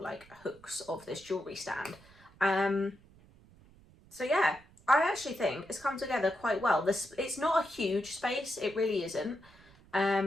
hooks of this jewellery stand. So yeah, I actually think it's come together quite well. It's not a huge space, it really isn't.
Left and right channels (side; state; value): right; noise; rumble, 25 dB below the sound